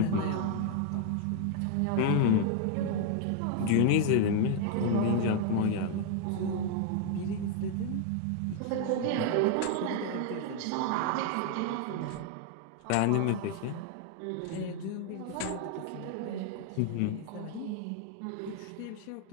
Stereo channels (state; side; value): different; both; correlation 0.00